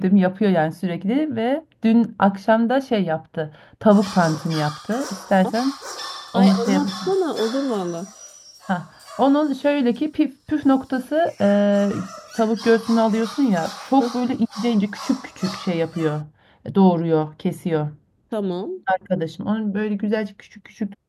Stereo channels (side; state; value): both; identical; correlation 1.00